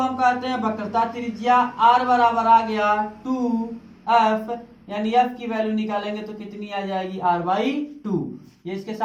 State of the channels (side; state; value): both; identical; correlation 1.00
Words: कहते हैं वक्रता त्रिज्या, R बराबर आ गया 2f, यानी f की वैल्यू निकालेंगे तो कितनी आ जाएगी, R/2। ये इसके